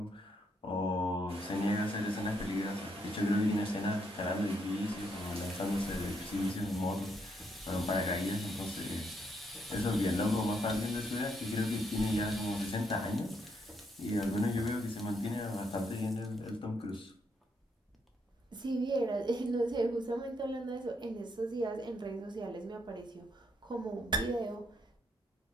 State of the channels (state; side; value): normal; both; correlation 0.75